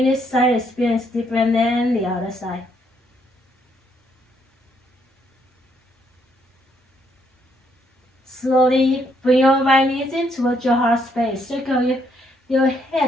this side experience different than the other side. Slowly bring your right knees in towards your heart space. Circle your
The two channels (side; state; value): both; normal; correlation 0.72